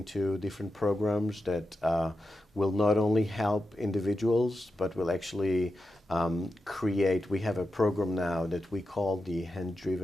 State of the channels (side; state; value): both; normal; correlation 0.90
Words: different programs that will not only help individuals, but will actually create. We have a program now that we call the